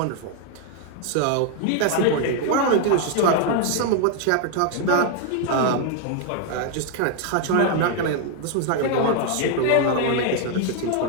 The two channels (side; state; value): both; different; correlation 0.00